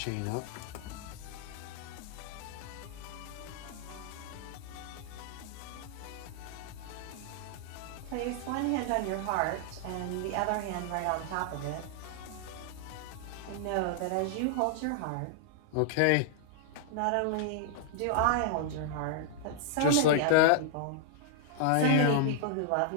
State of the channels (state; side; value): different; both; correlation -0.01